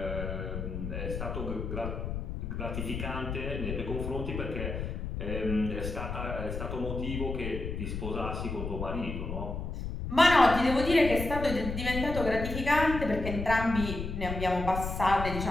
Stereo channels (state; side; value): noise; left; rumble, 5 dB below the sound